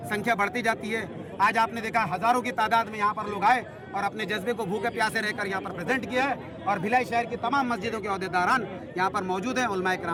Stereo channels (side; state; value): both; identical; correlation 1.00